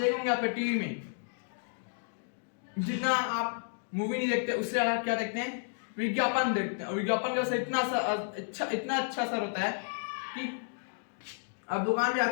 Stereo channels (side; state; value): right; silent; digital silence